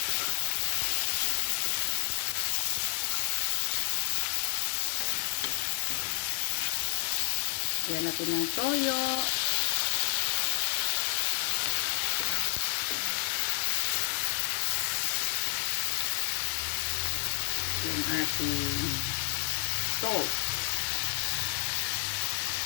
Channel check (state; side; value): silent; right; digital silence